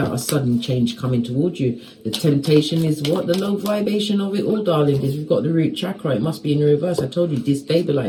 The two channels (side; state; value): both; identical; correlation 1.00